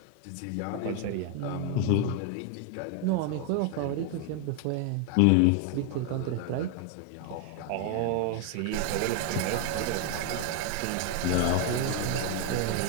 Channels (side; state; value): both; different; correlation 0.01